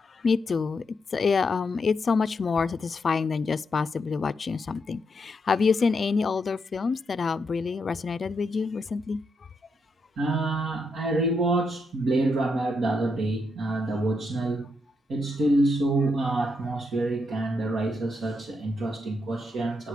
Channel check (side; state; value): both; normal; correlation 0.81